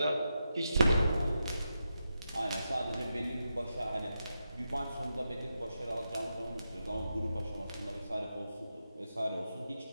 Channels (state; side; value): inverted; both; correlation -0.87